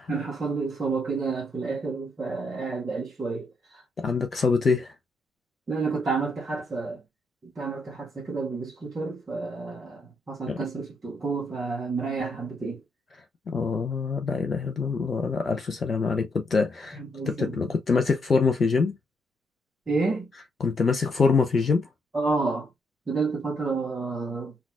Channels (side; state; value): both; normal; correlation 0.76